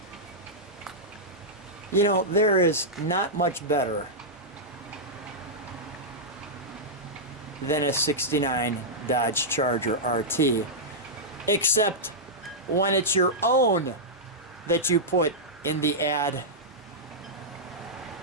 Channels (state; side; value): normal; both; correlation -0.09